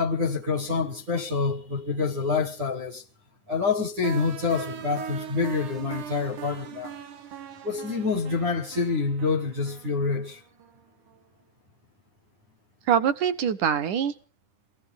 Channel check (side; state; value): left; late; 9.9 ms